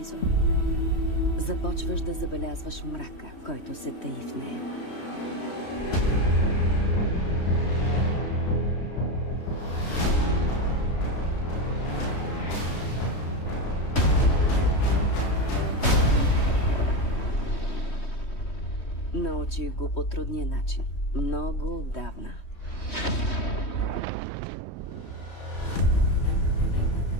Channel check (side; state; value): right; late; 3.2 ms